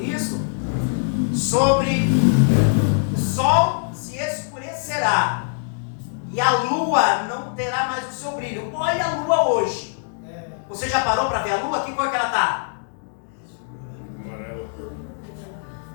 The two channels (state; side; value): silent; right; digital silence